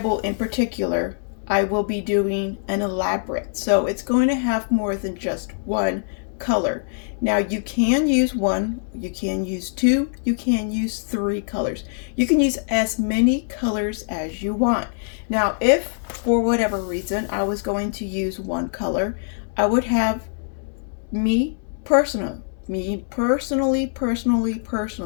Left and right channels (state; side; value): silent; right; 63 dB below the other